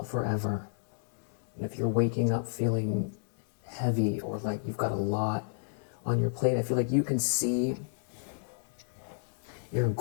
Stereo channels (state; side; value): silent; right; 57 dB below the other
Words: forever. And if you're waking up feeling heavy or like you've got a lot on your plate, I feel like you can see your